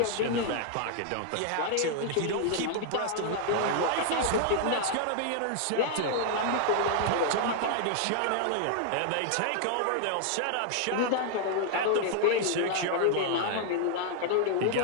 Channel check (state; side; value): different; both; correlation 0.00